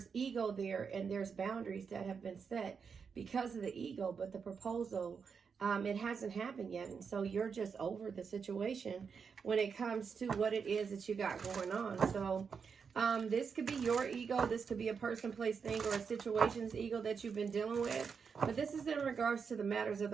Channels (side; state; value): left; quieter; 6.0 dB